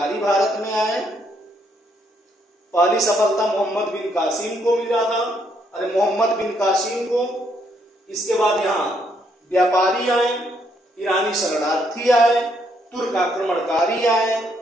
भारत में आए। पहली सफलता मोहम्मद बिन कासिम को मिला था, अरे मोहम्मद बिन कासिम को। इसके बाद यहाँ व्यापारी आए, ईरानी शरणार्थी आए, तुर्क आक्रमणकारी आए,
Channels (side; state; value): both; normal; correlation 0.73